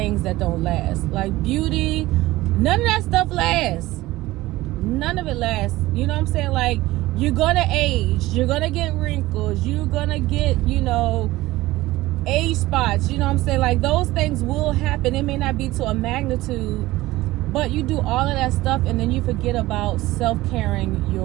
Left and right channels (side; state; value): left; quieter; 17.9 dB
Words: that don't last. Like beauty, none of that stuff lasts. None of it lasts. You know what I'm saying? Like, you're gonna age, you're gonna get wrinkles, you're gonna get, age spots. You know what I'm saying? Like, those things will happen. It may not be to a magnitude, but you do all of that stuff and then you forget about self-caring